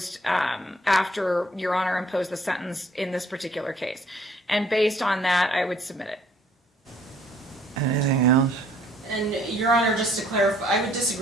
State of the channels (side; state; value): both; normal; correlation 0.61